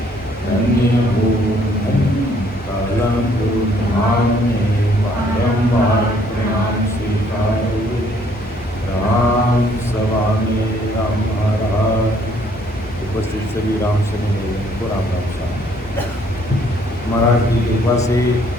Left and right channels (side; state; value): both; normal; correlation 0.64